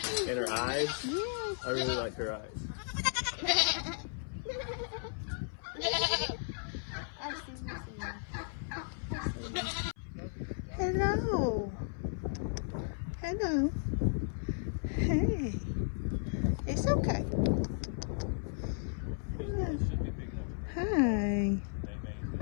And her eyes, I really like her eyes. Hello. Hello. Hey. It's okay. Hi.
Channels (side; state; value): right; silent; 55 dB below the other